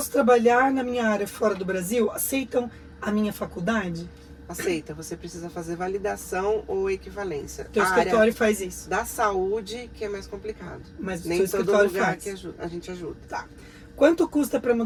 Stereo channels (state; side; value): identical; both; correlation 1.00